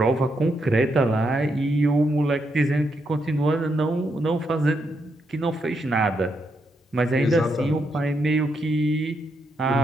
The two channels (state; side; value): normal; both; correlation 0.80